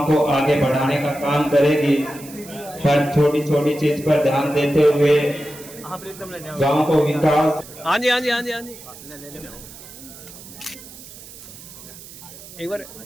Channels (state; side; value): noise; right; hiss, 17 dB below the sound